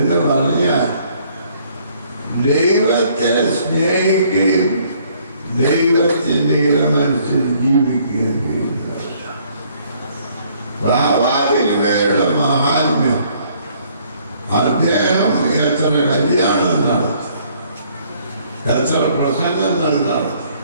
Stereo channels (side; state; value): both; inverted; correlation -0.63